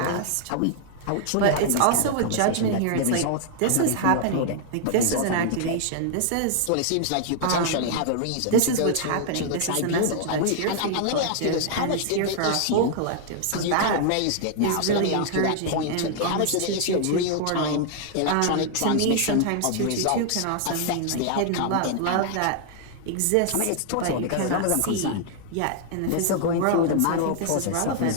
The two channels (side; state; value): both; different; correlation 0.00